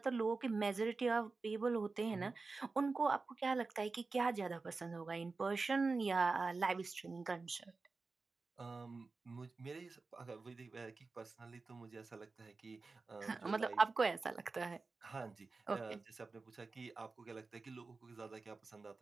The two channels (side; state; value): left; quieter; 4.0 dB